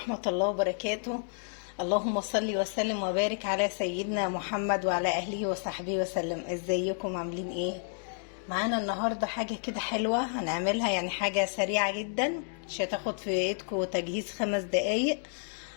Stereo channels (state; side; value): silent; right; 57 dB below the other